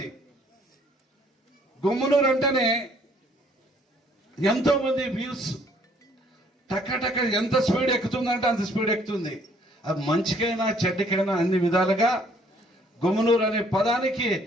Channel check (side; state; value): both; normal; correlation 0.62